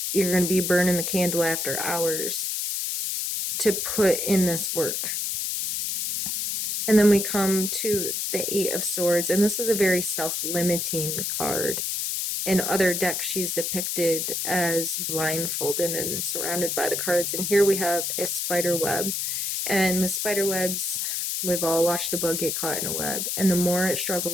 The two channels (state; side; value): noise; left; hiss, 1 dB below the sound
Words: you're going to be burning the candle after hours to put in this work. And then we come to the Eight of Swords, and this is a very self-limiting card. In other decks, she's depicted as blindfolded and surrounded by the cards. And here we have a spider web. And with spider webs, we've all watched a bug get caught in a web. And the more it